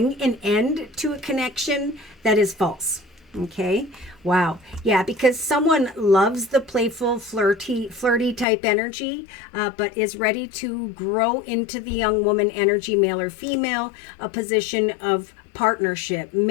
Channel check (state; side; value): drops out; right; at 8.5 s